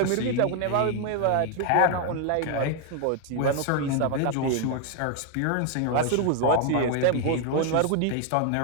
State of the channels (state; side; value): different; both; correlation 0.00